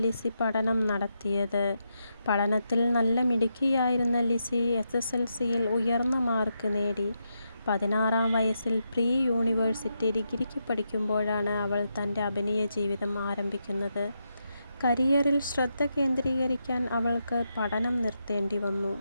ലിസി പഠനം നടത്തിയത്. പഠനത്തിൽ നല്ല മിടുക്കിയായിരുന്ന ലിസി SSLCയിൽ ഉയർന്ന മാർക്ക് നേടി. 16-ാം വയസ്സിൽ പ്രീ യൂണിവേഴ്സിറ്റി ഡിഗ്രിക്ക് പഠിക്കുമ്പോഴാണ് അവൾ തൻ്റെ അഭിനയ ജീവിതം ആരംഭിക്കുന്നത്. കരിയറിൽ ശ്രദ്ധ കേന്ദ്രീകരിക്കാൻ അവൾക്ക് പഠനം നിർത്തേണ്ടി വന്നു.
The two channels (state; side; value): inverted; both; correlation -0.84